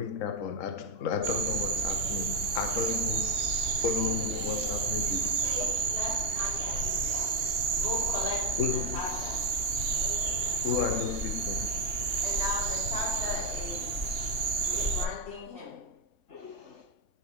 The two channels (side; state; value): right; late; 2.9 ms